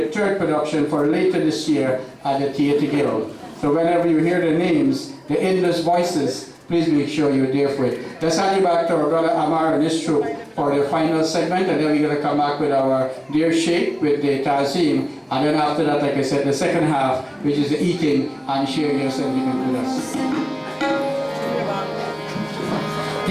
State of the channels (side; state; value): both; identical; correlation 1.00